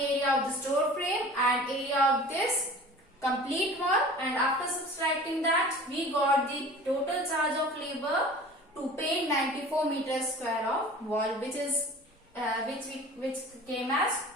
of this door frame and area of this complete wall, and after subtracting that, we got the total charge of labor to paint 94 meters square of wall, which is which came as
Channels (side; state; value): both; normal; correlation 0.42